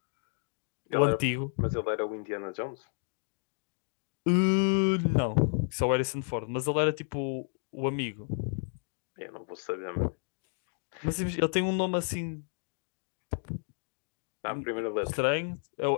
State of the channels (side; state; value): right; silent; 57 dB below the other